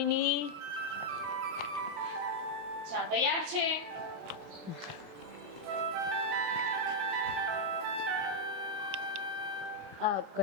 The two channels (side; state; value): left; late; 27 ms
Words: ચા તૈયાર છે. આ